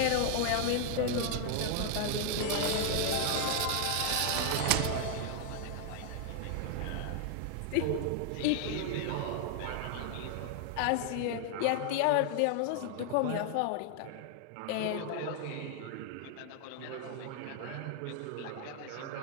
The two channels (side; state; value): both; different; correlation 0.00